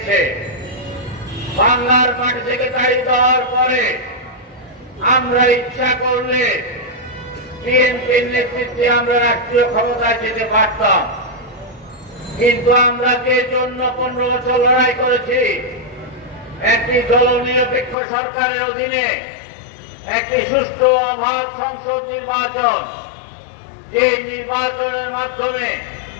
বাংলার মাটি থেকে তাড়িয়ে দেওয়ার পরে আমরা ইচ্ছা করলে বিএনপির নেতৃত্বে আমরা রাষ্ট্রীয় ক্ষমতায় যেতে পারতাম, কিন্তু আমরা যে জন্য 15 বছর লড়াই করেছি, একটি দলনিরপেক্ষ সরকারের অধীনে একটি সুষ্ঠু অবাধ সংসদ নির্বাচন, যে নির্বাচনের মাধ্যমে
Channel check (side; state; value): right; drops out; at 17.9 s